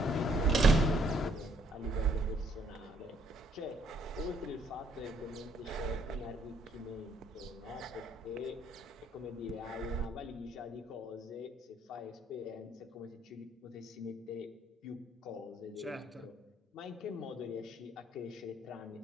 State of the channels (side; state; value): both; normal; correlation 0.68